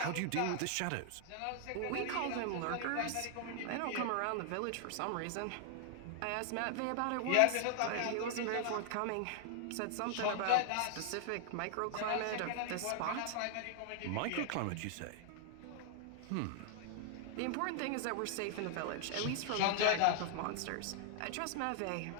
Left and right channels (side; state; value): both; different; correlation 0.00